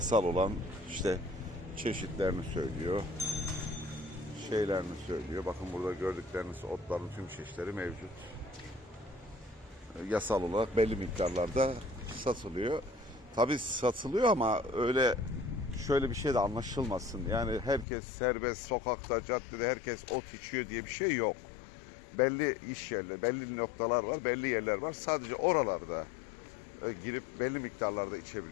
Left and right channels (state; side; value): drops out; right; at 17.9 s